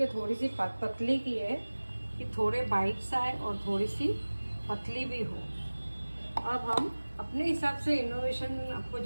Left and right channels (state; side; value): inverted; both; correlation -1.00